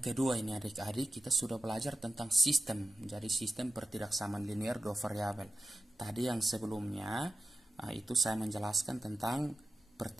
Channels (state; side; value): normal; both; correlation 0.92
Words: kedua ini adik-adik, kita sudah belajar tentang sistem. Jadi sistem pertidaksamaan linear dua variabel. Tadi yang sebelumnya itu saya menjelaskan tentang